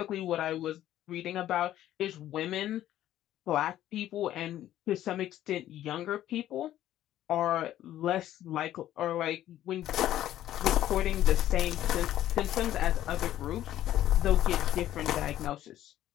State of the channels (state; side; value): quieter; right; 12.8 dB